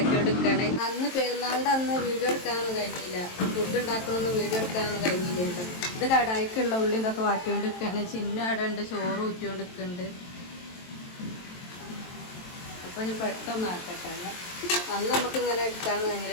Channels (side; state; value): right; late; 23 ms